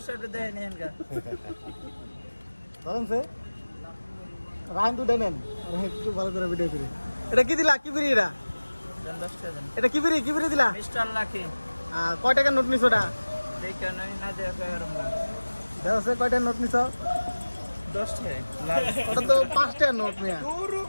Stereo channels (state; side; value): inverted; both; correlation -1.00